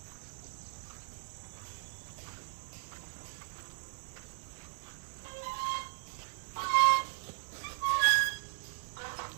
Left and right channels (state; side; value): silent; left; digital silence